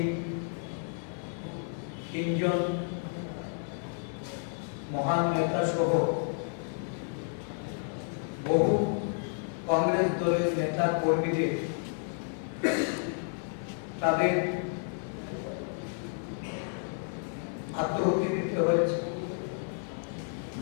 তিনজন মহান নেতা সহ বহু কংগ্রেস দলের নেতা কর্মীদের তাদের আত্মহত্যা দিতে হয়েছে,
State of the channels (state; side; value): silent; right; 57 dB below the other